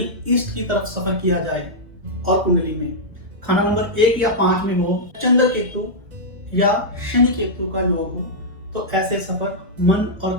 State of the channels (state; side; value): late; left; 2.0 ms